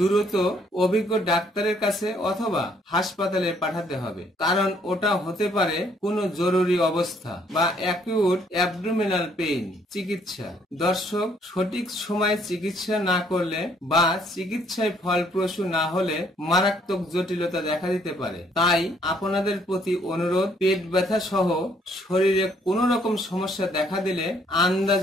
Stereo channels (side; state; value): both; normal; correlation 0.66